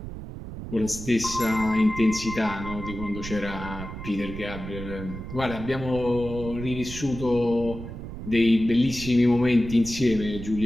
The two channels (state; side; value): noise; right; rumble, 10 dB below the sound